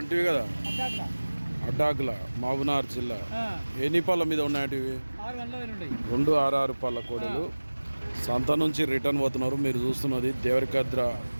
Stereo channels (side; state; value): both; inverted; correlation -1.00